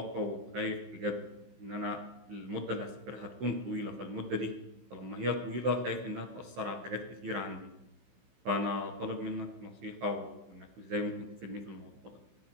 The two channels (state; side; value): late; left; 16 ms